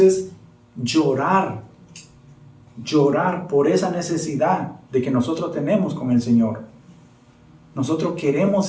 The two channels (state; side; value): identical; both; correlation 1.00